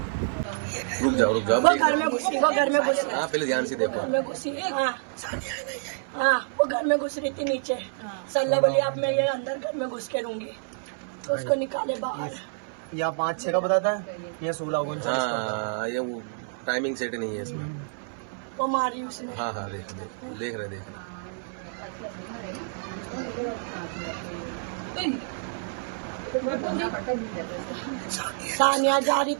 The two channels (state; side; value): silent; left; 58 dB below the other